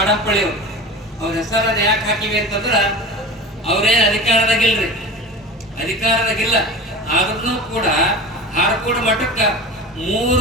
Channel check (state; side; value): normal; both; correlation 0.32